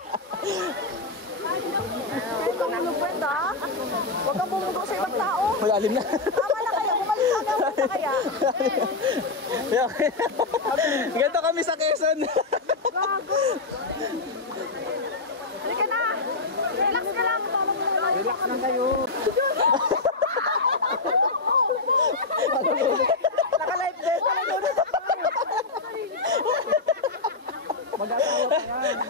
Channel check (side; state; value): right; quieter; 3.6 dB